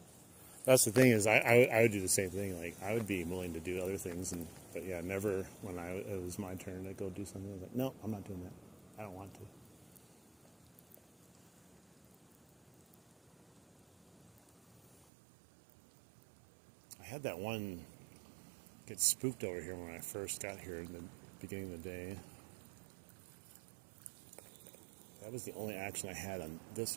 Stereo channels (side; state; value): left; drops out; at 15.1 s